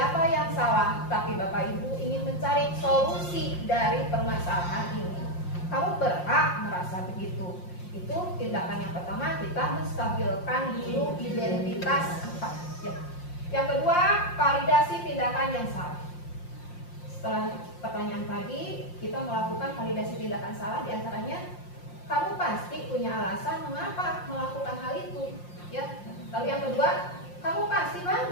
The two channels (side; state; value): right; late; 5.7 ms